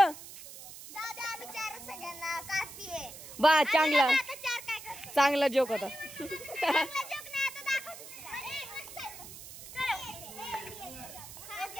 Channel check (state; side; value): noise; right; hiss, 14 dB below the sound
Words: बा चांगला जोक होता.